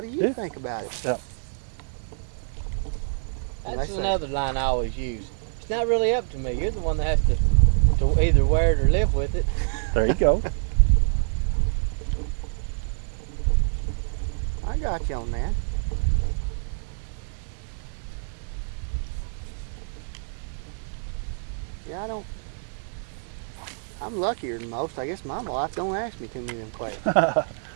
do you Yeah. think about it? Yeah. That's say- another line I always use. It's not really up to me. You're the one that has to either wear it or live with it. There you go. I got you on that. Yeah, I'm luckier than most. I guess my wife don't ask me too many of them questions.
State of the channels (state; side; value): silent; left; digital silence